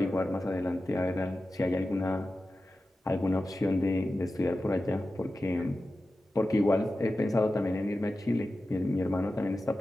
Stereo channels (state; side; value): normal; both; correlation 0.93